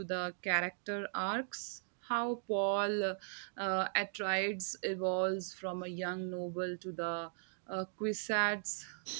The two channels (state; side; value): silent; left; digital silence